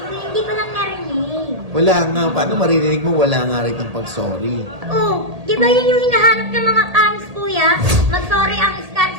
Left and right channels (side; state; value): left; late; 1.8 ms